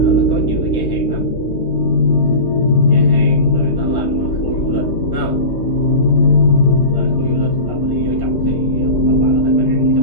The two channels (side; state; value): right; late; 3.2 ms